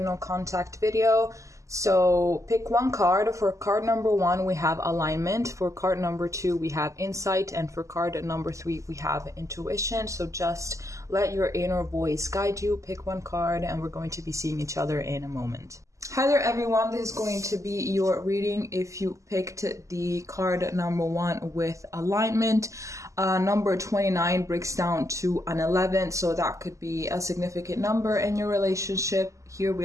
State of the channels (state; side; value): late; left; 0.15 ms